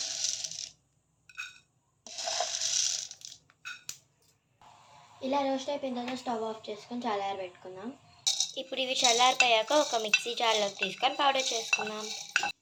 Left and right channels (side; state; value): both; identical; correlation 1.00